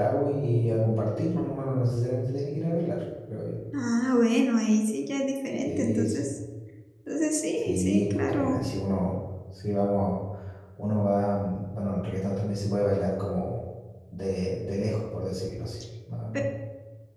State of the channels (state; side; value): identical; both; correlation 1.00